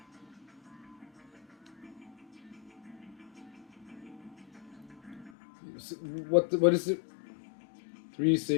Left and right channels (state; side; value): drops out; right; at 5.3 s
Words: What is it?